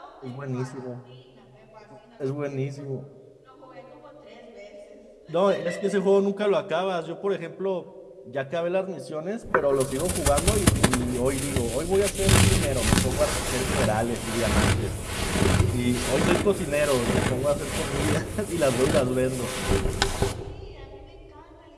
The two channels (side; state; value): both; identical; correlation 1.00